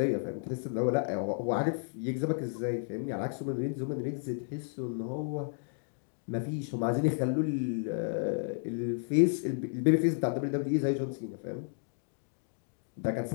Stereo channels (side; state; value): right; silent; digital silence